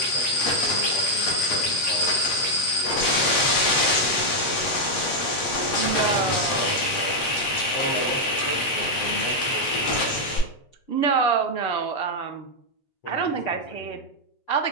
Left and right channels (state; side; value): late; right; 8.5 ms